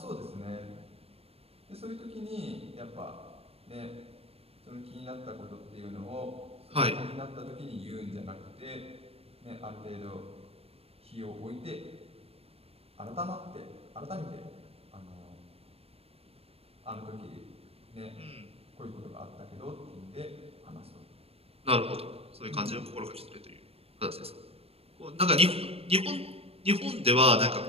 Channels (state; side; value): late; left; 0.28 ms